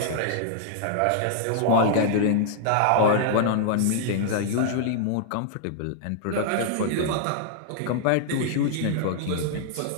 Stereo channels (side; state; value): both; different; correlation -0.01